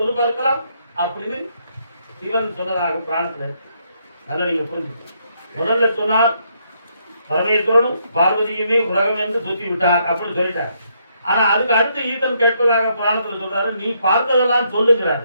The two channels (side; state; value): both; inverted; correlation -0.74